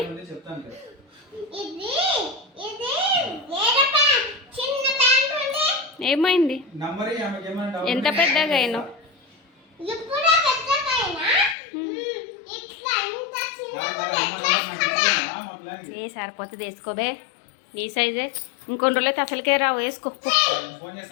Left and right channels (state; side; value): drops out; right; at 11.6 s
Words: ఏమైంది, ఎంత పెద్దగా అయినా ఏ సరిపోతుంది, వేసుకోబే నీ సైజే. ఇంకొన్ని రోజులైతే అసలుకే రావు,